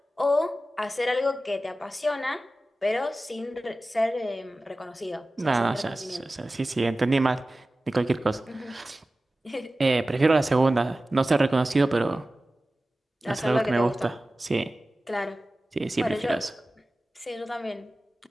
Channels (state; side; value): normal; both; correlation 0.96